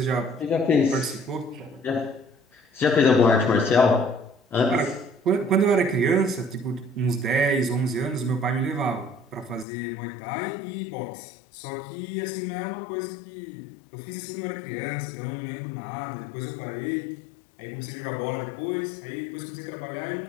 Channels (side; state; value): right; drops out; at 9.7 s